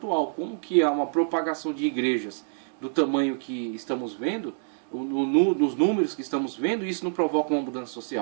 Como que há uma propagação de igrejas do tamanho que estamos vendo, nos números que estamos vendo, e isso não provoca uma mudança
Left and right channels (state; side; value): silent; left; digital silence